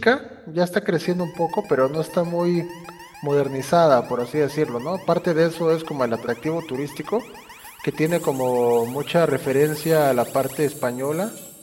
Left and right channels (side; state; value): both; identical; correlation 1.00